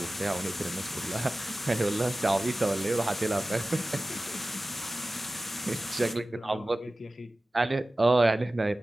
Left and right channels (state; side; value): normal; both; correlation 0.96